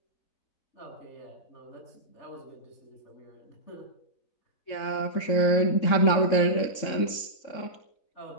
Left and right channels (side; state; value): right; late; 3.6 ms